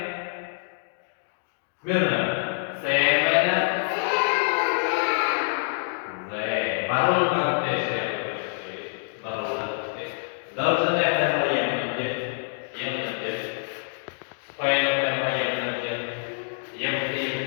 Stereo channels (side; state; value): right; silent; digital silence